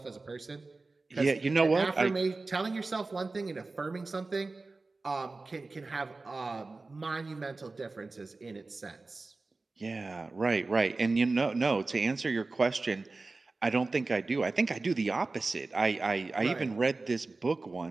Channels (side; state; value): left; quieter; 3.5 dB